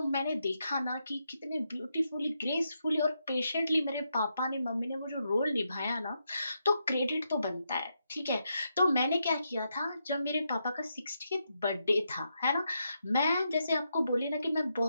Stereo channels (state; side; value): inverted; both; correlation -0.82